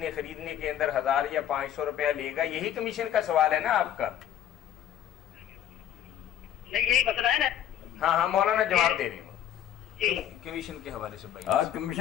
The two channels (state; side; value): quieter; right; 10.5 dB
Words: خریدنے کے اندر 1000 یا 500 روپیہ لے گا, یہی کمیشن کا سوال ہے نا آپ کا؟ نہیں یہی مسئلہ ہے نا. ہاں ہاں مولانا جواب دے رہے ہوں کمیشن کے حوالے سے. آج